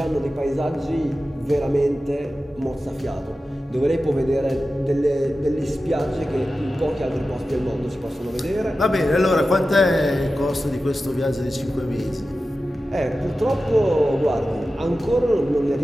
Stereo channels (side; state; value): both; normal; correlation 0.94